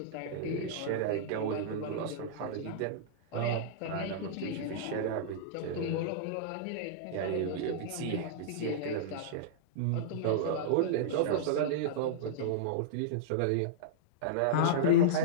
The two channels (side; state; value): both; different; correlation -0.03